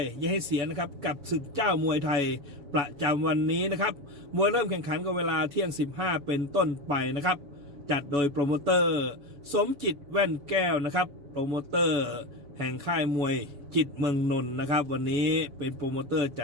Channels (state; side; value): late; left; 7.0 ms